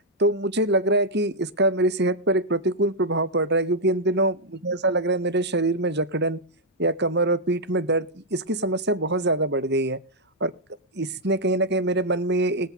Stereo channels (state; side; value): normal; both; correlation -0.04